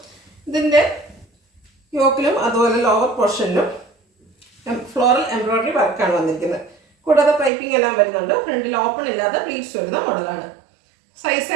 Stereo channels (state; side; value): drops out; left; at 7.5 s